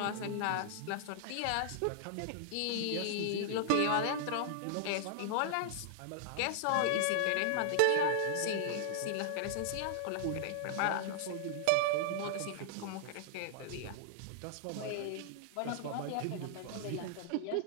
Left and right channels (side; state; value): both; different; correlation 0.00